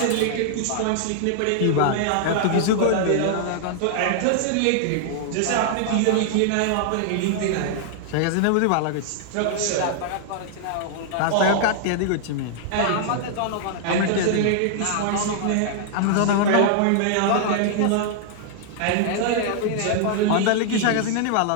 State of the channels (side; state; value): both; different; correlation -0.01